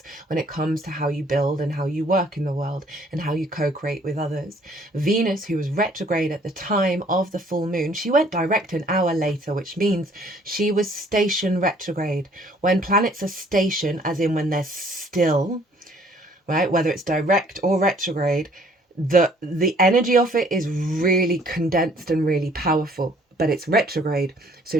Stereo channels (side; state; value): both; normal; correlation 0.59